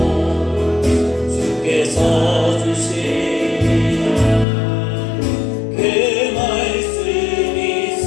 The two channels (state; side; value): drops out; right; at 4.5 s